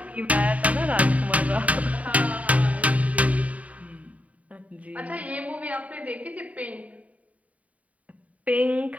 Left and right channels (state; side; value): late; left; 0.069 ms